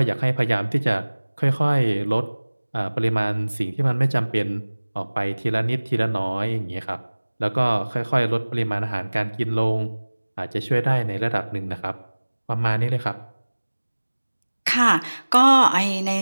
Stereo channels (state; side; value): inverted; both; correlation -1.00